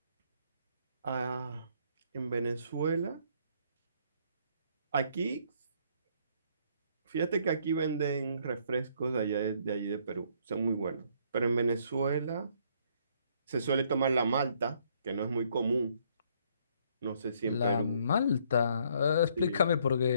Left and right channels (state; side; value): inverted; both; correlation -0.66